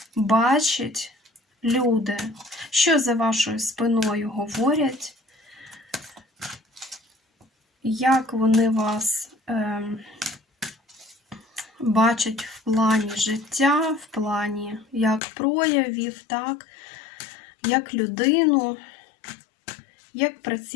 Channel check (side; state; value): right; drops out; at 15.2 s